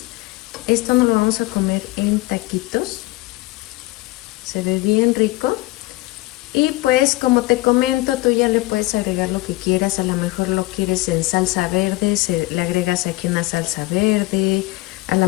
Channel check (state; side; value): quieter; right; 20.5 dB